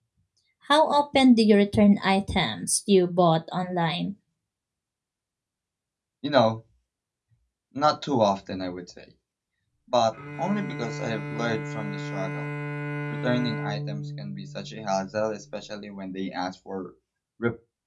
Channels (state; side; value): identical; both; correlation 1.00